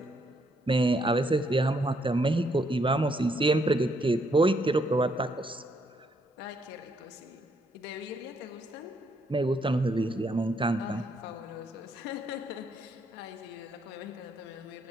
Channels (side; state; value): both; normal; correlation 0.72